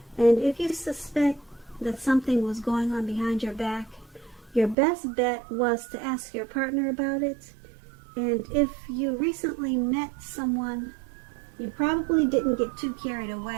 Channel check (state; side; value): drops out; left; at 4.8 s